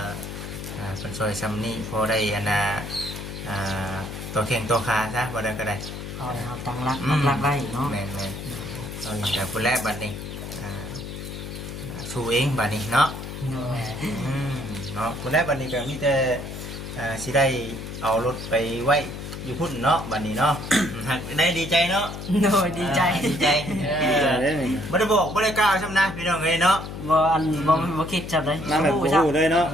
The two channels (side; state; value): left; noise; hum, 8 dB below the sound